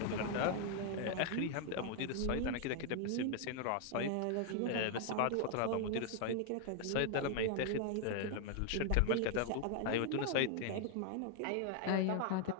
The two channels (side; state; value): both; different; correlation 0.00